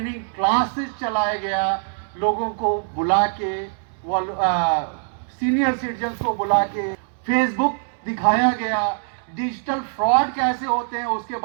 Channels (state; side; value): silent; left; digital silence